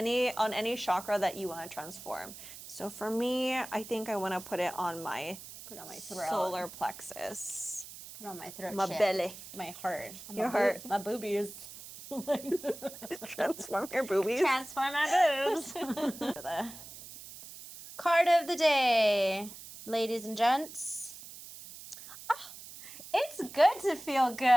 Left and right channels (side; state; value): right; noise; hiss, 14 dB below the sound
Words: any chakra that you want to transform. So for me, I think I want to put it on my throat. solar plexus. Put it on my throat. My belly. My heart. Your heart. My boobies. Transform your boobies. Transform my boobs. The card of the day, ladies and gents. Oh, it's good to feel